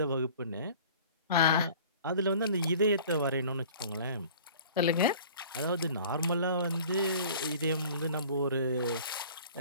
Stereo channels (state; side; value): inverted; both; correlation -0.47